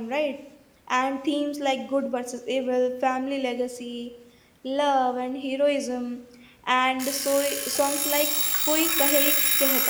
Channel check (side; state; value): both; identical; correlation 1.00